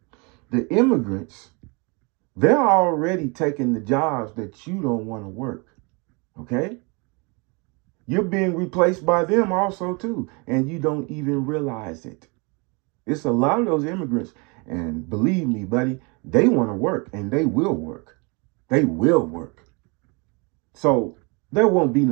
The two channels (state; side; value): quieter; left; 30.5 dB